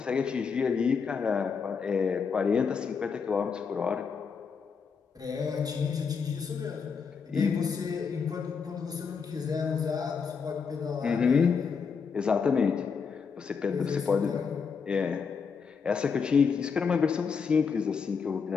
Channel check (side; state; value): right; quieter; 5.8 dB